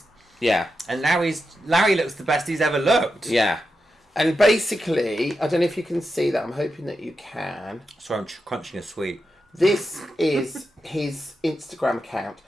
Yeah. And now Larry looks the best he's ever looked. Yeah. And basically, I don't know if you can see that. I'm hoping that you can. Sorry, I'm crunching a sweet. This is his Instagram account.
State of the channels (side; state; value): both; normal; correlation 0.88